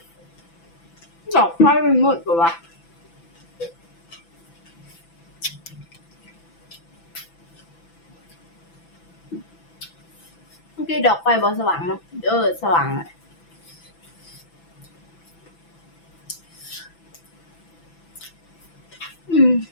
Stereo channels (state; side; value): late; right; 6.0 ms